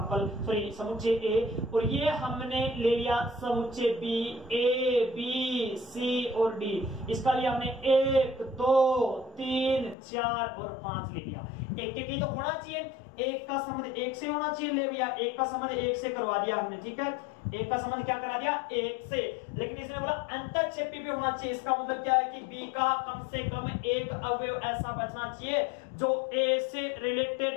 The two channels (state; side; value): drops out; right; at 10.0 s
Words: सॉरी समुच्चय ए, और ये हमने ले लिया समुच्चय बी, ए बी सी और डी। इसका लिए हमने 1 2 3 4 और 5 ले लिया। एक ही तो होना चाहिए, एक का संबंध एक से होना चाहिए। ले भैया एक का संबंध एक से करवा दिया हमने, ठीक है, एक का संबंध क्या करा दिया एक से। लेकिन इसने बोला अंतःक्षेपी भी होना चाहिए। इसका मतलब क्या है कि बी का कम से कम एक अवयव ऐसा बचना चाहिए जो ए से